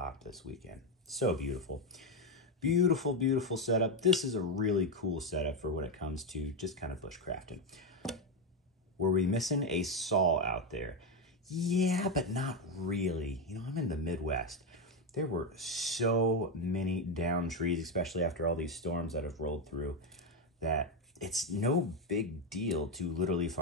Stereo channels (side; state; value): both; normal; correlation 0.07